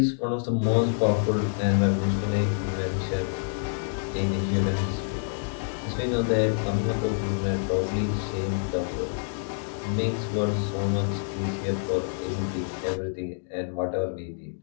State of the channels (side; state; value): right; silent; digital silence